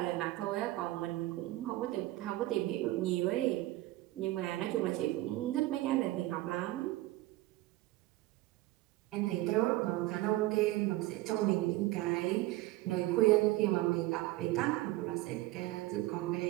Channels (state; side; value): quieter; left; 17.7 dB